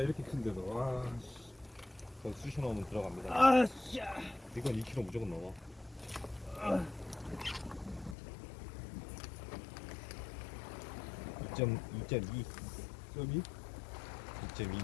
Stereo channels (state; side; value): drops out; right; at 8.2 s